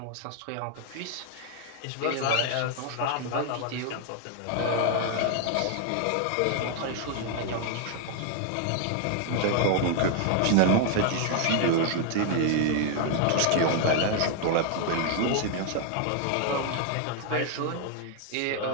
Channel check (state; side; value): different; both; correlation 0.00